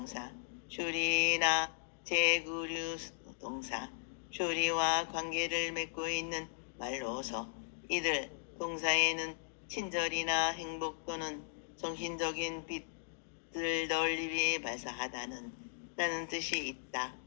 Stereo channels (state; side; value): silent; right; digital silence